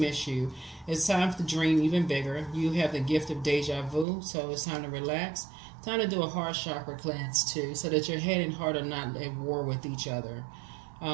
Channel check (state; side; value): drops out; left; at 4.0 s